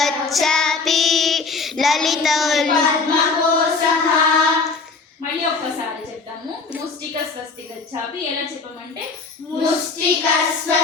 లలితౌ పద్మకోశః. మళ్ళీ ఒక్కసారి చెప్తాము. ముష్టిక స్వస్తి గచ్ఛాపి ఎలా చెప్పమంటే ముష్టిక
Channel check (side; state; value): right; quieter; 4.3 dB